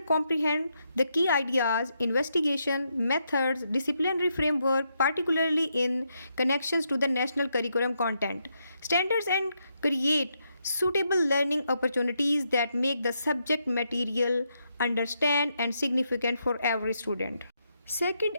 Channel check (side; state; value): both; inverted; correlation -0.80